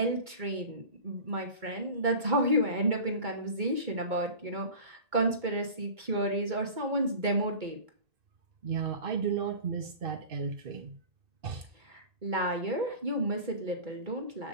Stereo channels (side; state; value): left; late; 2.2 ms